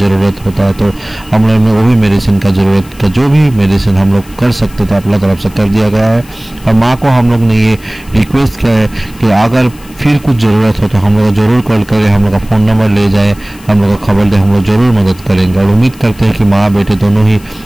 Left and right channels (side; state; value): left; noise; hiss, 24 dB below the sound